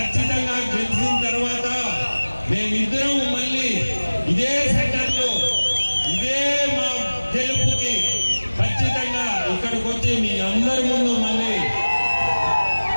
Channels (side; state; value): both; inverted; correlation -1.00